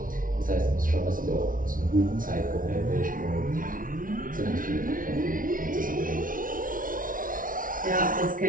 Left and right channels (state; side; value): late; left; 0.39 ms